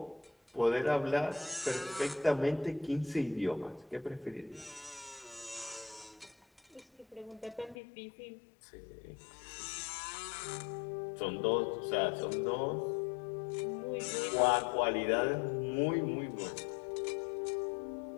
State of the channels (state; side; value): drops out; right; at 7.8 s